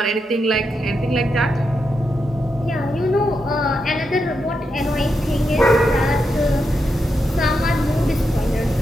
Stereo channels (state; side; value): normal; both; correlation 0.85